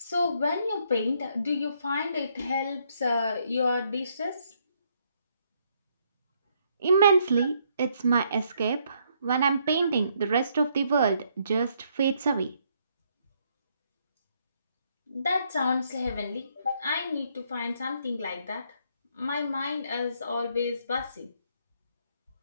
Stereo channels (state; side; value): inverted; both; correlation -0.71